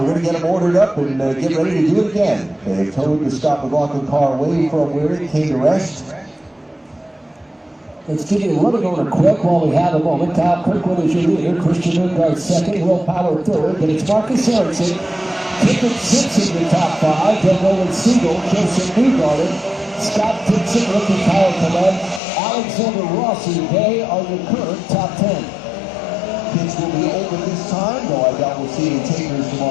going to get them ordered up and get ready to do it again. They've towed the Scott McLaughlin car away from where it came to rest. Let's give you a running order quick while we have a moment. Kyle Kirkwood is your leader, Christian Lundgaard second, Will Power third, but it's Marcus Ericsson, Tippett sits in the top 5, then Roland Siegel, Joseph Newgarden, Scott Dixon, rookie Kyle Clement, Alexander Rossi. They are your current top 10. Pits will be open this time, though I doubt we'll see any takers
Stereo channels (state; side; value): drops out; right; at 22.2 s